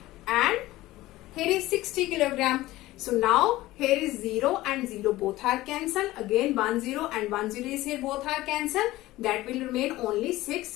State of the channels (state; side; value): quieter; right; 17.3 dB